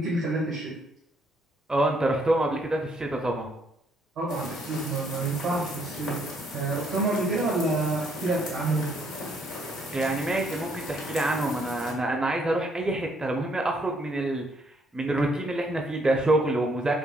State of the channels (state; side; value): normal; both; correlation 0.69